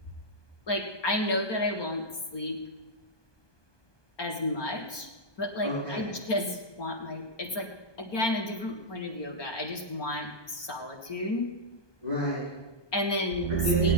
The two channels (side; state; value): right; late; 1.2 ms